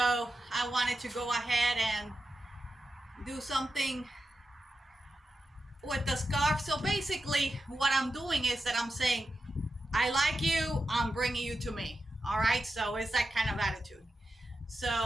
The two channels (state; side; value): normal; both; correlation 0.90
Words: I wanted to go ahead and do something with the scarf. So basically what I'm doing is that I'm saying, I like you, I'm bringing you to me. All right, so it's that kind of attitude.